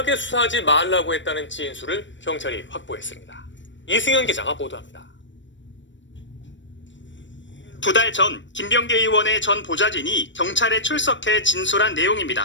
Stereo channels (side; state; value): right; late; 0.54 ms